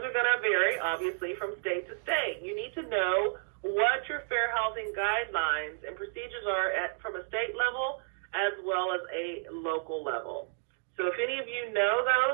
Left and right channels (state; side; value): silent; left; digital silence